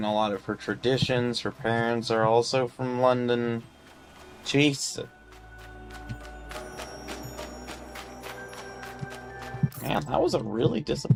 a lot of her traditions. Her parents are also from London. Jeez. Man, that was a really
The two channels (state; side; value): identical; both; correlation 1.00